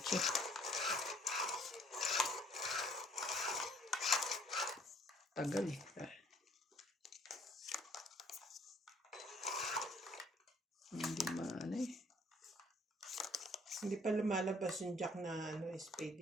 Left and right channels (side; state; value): both; normal; correlation 0.60